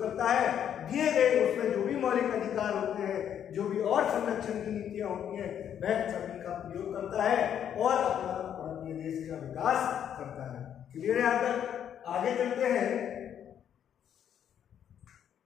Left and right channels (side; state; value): right; quieter; 9.3 dB